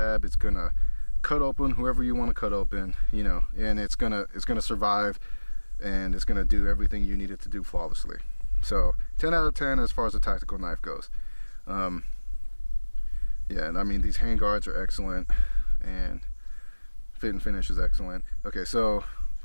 It's gonna cut open whoever you want to cut open, you know, and it's gonna survive, and it's gonna do everything you need it to do flawlessly. So 10 out of 10 as far as a tactical knife goes. Yeah, and I mean, these hand guards are excellent, and fit and finish is excellent. Okay, so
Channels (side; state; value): both; inverted; correlation -1.00